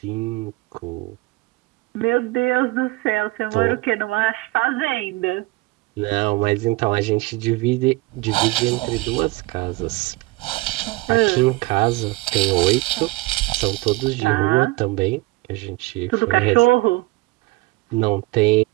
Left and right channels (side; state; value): left; quieter; 21.7 dB